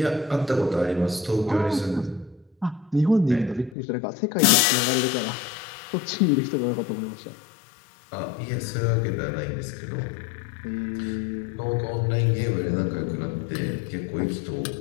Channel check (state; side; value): drops out; right; at 3.8 s